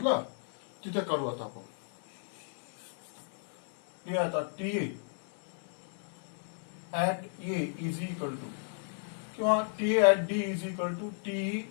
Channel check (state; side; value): silent; right; 56 dB below the other